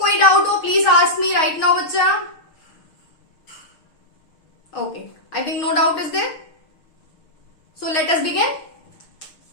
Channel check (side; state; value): right; late; 6.4 ms